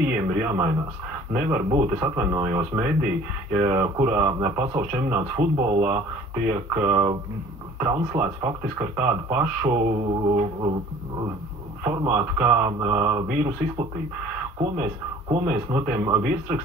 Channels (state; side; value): normal; both; correlation 0.50